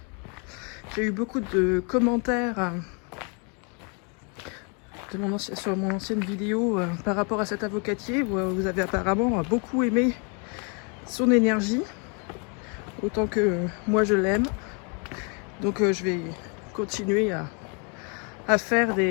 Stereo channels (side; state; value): right; quieter; 36.1 dB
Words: J'ai eu beaucoup de commentaires sur mon ancienne vidéo par rapport à cet avocatier. Vous avez apparemment beaucoup aimé son énergie, autant que moi je l'aime. Donc je vais continuer à faire